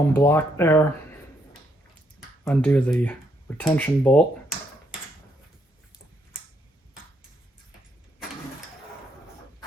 block there, undo the retention bolt,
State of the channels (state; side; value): normal; both; correlation 0.75